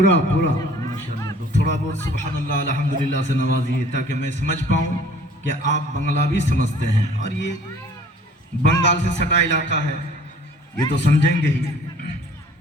पूरा माशाल्लाह, तो थोड़ा बहुत सुभान अल्लाह अल्हम्दुलिल्लाह से नवाजिए ताकि मैं समझ पाऊँ कि आप बंगला भी समझते हैं। और ये बंगाल से सटा इलाका है, ये तो समझेंगे ही।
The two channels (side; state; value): both; normal; correlation 0.52